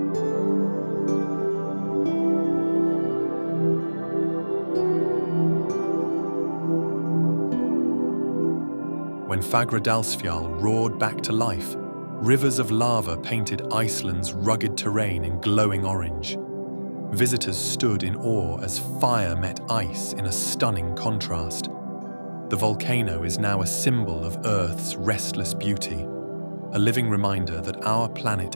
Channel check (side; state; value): both; inverted; correlation -1.00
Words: When Fagradalsfjall roared back to life, rivers of lava painted Iceland's rugged terrain in glowing orange. Visitors stood in awe as fire met ice in a stunning contrast. The volcano is now a symbol of Earth's restless beauty, a living reminder that our